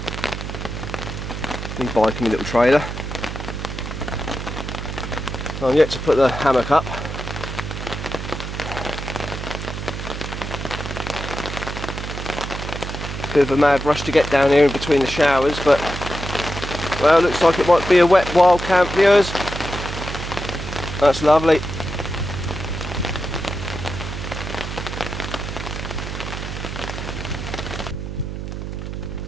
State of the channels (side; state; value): right; noise; hum, 6 dB below the sound